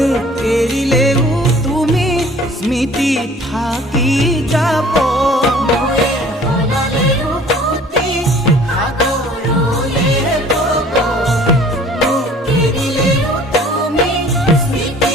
এৰিলেও তুমি স্মৃতি থাকি যাব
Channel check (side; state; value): both; normal; correlation 0.51